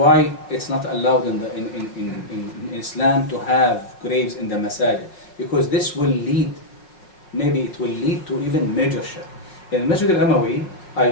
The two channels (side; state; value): right; late; 5.4 ms